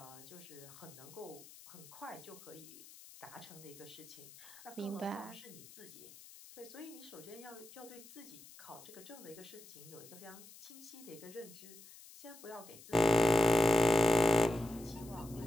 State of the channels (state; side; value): noise; left; hiss, 19 dB below the sound